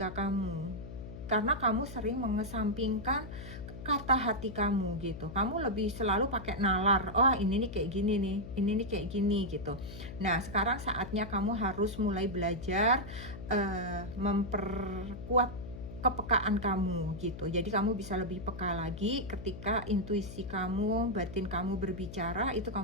kamu, karena kamu sering mengesampingkan kata hati kamu gitu. Kamu lebih selalu pakai nalar. Oh, ini nih kayak gini nih. Ini nih kayak gini gitu. Nah, sekarang saatnya kamu harus mulai belajar memperkuat kepekaan kamu gitu. Jadi kamu bisa lebih peka lagi ketika intuisi kamu, batin kamu berbicara, itu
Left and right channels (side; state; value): left; noise; hum, 11 dB below the sound